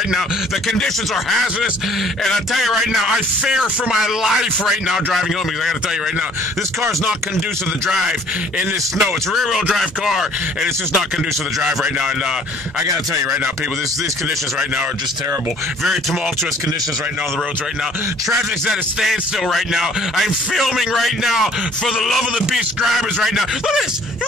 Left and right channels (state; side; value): normal; both; correlation 0.56